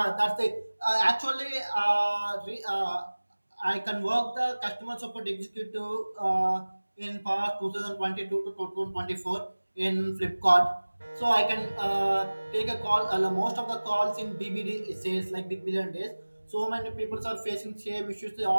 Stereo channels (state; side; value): inverted; both; correlation -1.00